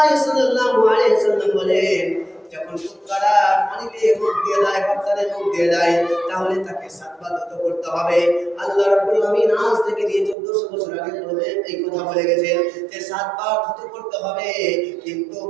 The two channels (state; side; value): drops out; left; at 10.4 s